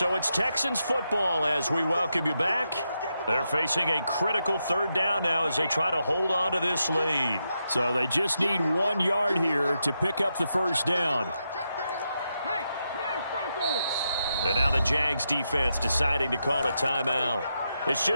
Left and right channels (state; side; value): inverted; both; correlation -0.85